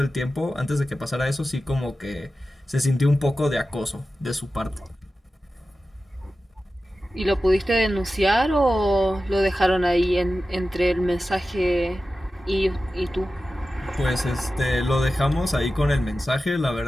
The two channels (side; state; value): both; normal; correlation 0.94